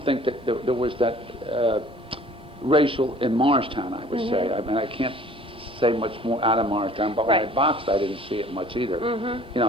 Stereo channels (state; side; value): normal; both; correlation 0.51